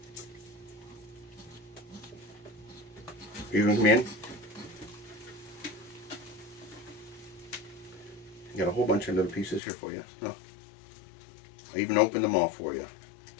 You going to come in? Got a whole bunch of little pieces here for you. No. I even opened them all for you.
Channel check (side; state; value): right; drops out; at 9.6 s